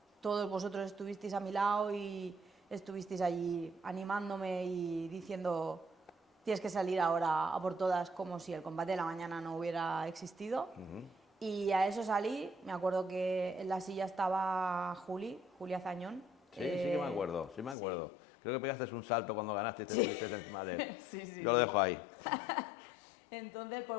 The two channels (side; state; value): right; drops out; at 17.8 s